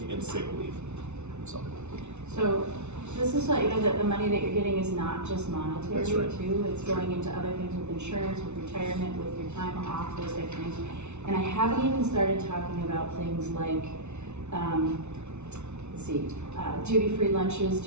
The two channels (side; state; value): left; late; 0.82 ms